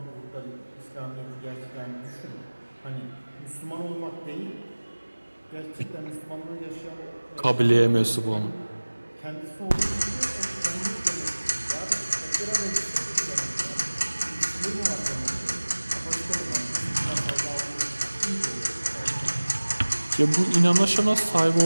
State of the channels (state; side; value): inverted; both; correlation -1.00